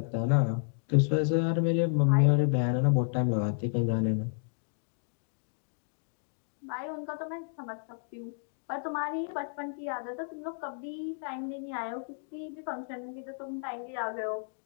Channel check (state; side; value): silent; right; digital silence